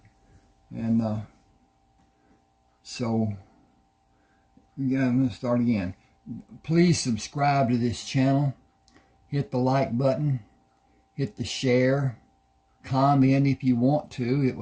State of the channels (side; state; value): both; identical; correlation 1.00